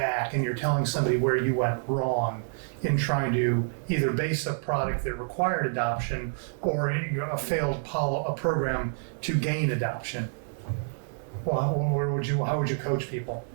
and you're telling somebody where you went wrong in trying to either base a product that required adoption or a failed a program to gain adoption. Well, how would you coach people?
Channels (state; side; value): silent; left; digital silence